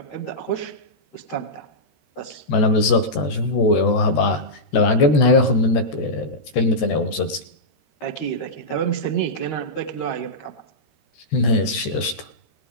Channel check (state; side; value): late; right; 14 ms